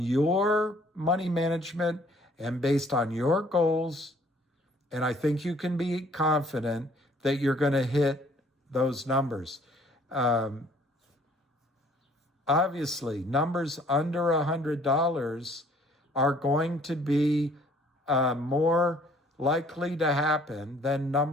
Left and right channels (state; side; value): normal; both; correlation 0.59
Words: money management and based on your goals. And I think you can be confident that you're going to hit those numbers. Obviously, numbers under $100 are going to be more likely to happen than